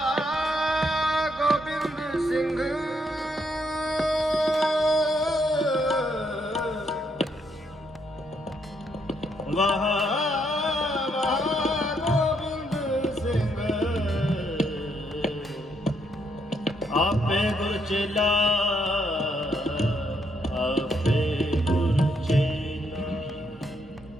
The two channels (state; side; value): normal; both; correlation 0.75